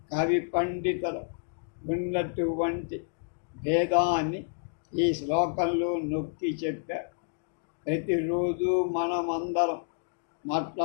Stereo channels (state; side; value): silent; right; digital silence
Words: కవి పండితుల ఉన్నటువంటి భేదాన్ని ఈ శ్లోకంలో నొక్కి చెప్పారు. ప్రతిరోజు మనమందరం